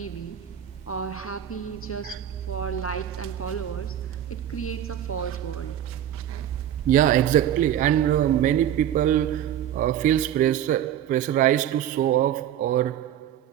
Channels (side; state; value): left; quieter; 10.9 dB